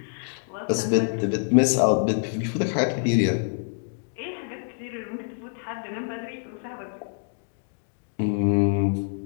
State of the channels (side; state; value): right; silent; digital silence